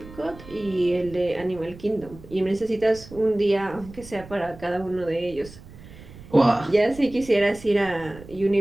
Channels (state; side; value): noise; right; rumble, 18 dB below the sound